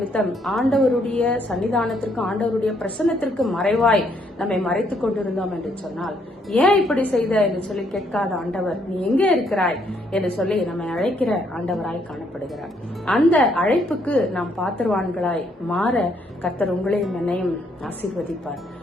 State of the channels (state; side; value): normal; both; correlation 0.71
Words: ஆண்டவருடைய சன்னிதானத்திற்கு, ஆண்டவருடைய பிரசன்னத்திற்கு மறைவாய் நம்மை மறைத்துக் கொண்டிருந்தோம் என்று சொன்னால், ஏன் இப்படி செய்த என்று சொல்லி கேட்காத ஆண்டவர் நீ எங்கே இருக்கிறாய் என்று சொல்லி நம்மை அழைக்கிற ஆண்டவராய் காணப்படுகிறார். அந்த அழைப்புக்கு நாம் பாத்திரவான்களாய் மாற கர்த்தர் உங்களையும் என்னையும் ஆசீர்வதிப்பார்.